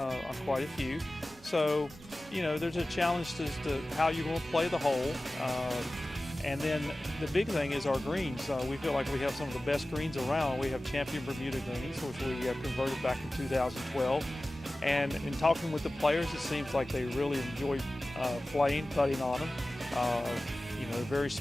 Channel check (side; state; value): both; normal; correlation 0.96